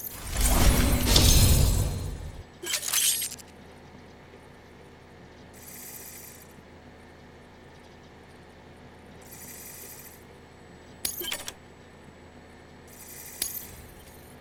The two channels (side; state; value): both; identical; correlation 1.00